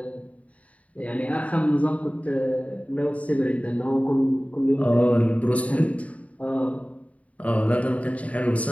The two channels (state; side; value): late; right; 0.067 ms